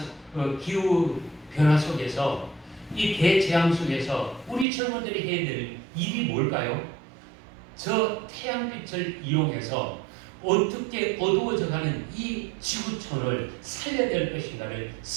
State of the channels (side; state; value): left; drops out; at 4.7 s